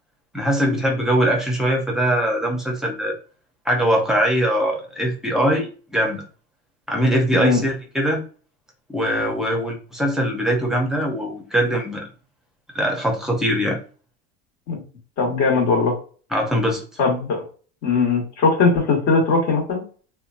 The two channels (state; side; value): normal; both; correlation 0.39